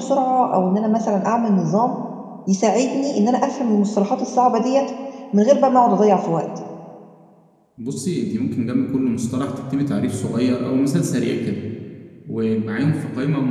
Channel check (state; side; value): identical; both; correlation 1.00